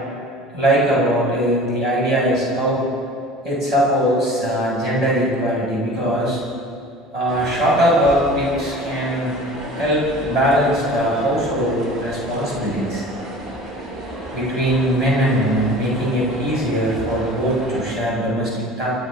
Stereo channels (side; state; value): both; normal; correlation 0.42